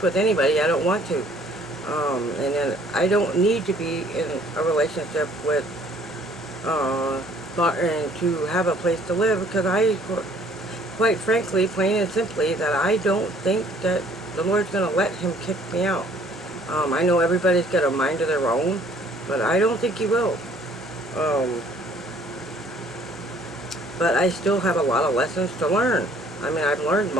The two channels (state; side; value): normal; both; correlation 0.58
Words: with anybody I don't want to. And then I don't need to be in a relationship with Martin to have a place to live, because quite frankly, plain and simply, that I don't think that the Lord's going to let him kick me out. I know everybody's got a mind of their own, but I don't think He will. But I still have a lot of lessons to learn. I mean, I've learned